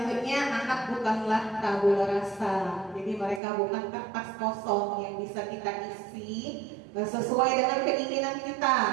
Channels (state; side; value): drops out; left; at 3.4 s